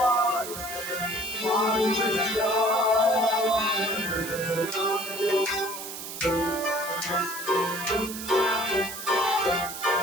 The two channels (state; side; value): noise; right; hiss, 9 dB below the sound